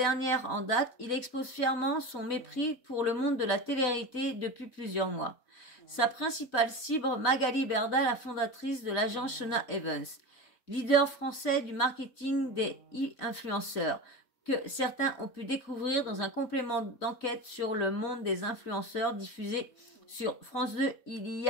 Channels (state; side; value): late; right; 4.0 ms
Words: en date, il expose fièrement son mépris pour le monde de la télé-réalité depuis plusieurs mois. Sa principale cible, Magali Berda, la fondatrice de l'agence Shona Evans, leader français du marketing des e-influenceurs, que certains ont pu découvrir dans un complément d'enquête sur le monde des influenceurs diffusé sur France 2 il y